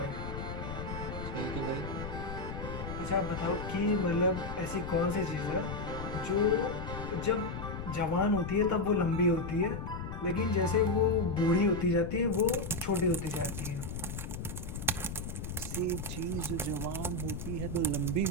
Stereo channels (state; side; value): noise; left; rumble, 6 dB below the sound